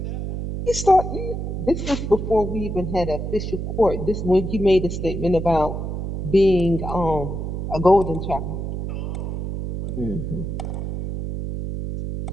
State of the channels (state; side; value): noise; right; hum, 4 dB below the sound